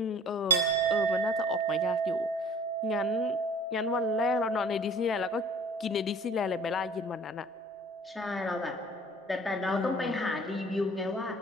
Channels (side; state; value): both; normal; correlation 0.50